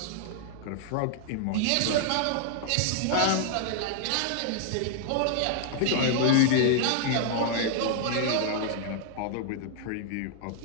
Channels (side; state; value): both; different; correlation -0.01